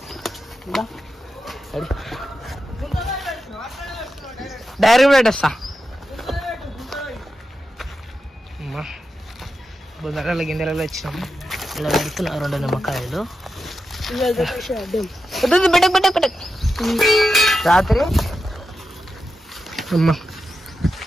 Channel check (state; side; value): normal; both; correlation 0.89